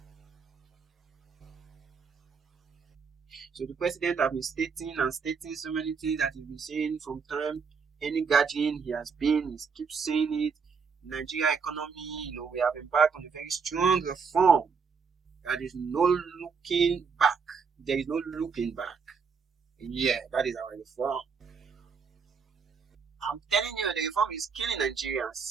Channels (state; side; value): quieter; left; 5.7 dB